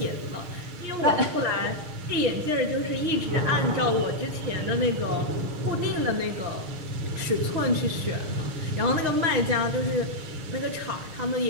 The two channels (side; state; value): left; late; 6.5 ms